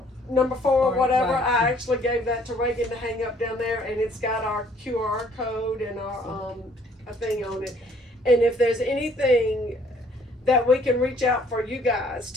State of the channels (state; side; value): normal; both; correlation 0.60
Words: number 4 or whatever. Right. I actually gave that to Reagan to hang up down there, and it's got our QR code and our a thing on it. And if there's anything that we can reach out for you guys